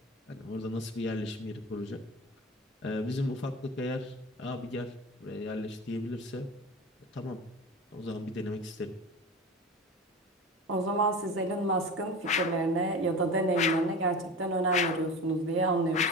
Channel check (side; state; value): both; normal; correlation 0.31